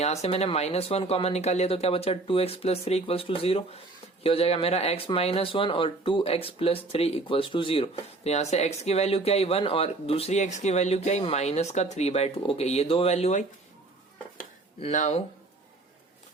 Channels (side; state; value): left; quieter; 3.2 dB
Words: से मैंने -1 कॉमन निकाल लिया, तो क्या बचा? 2x plus 3 equals to 0। ये हो जाएगा मेरा x माइनस 1 और 2x प्लस 3 इक्वल्स टू 0। तो यहाँ से x की वैल्यू क्या आई? 1, और दूसरी x की वैल्यू क्या आई? माइनस का 3/2। ओके, ये दो वैल्यू आई। Now